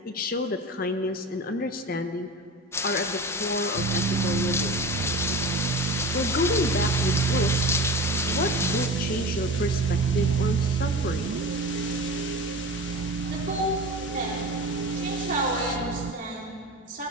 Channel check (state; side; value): normal; both; correlation 0.31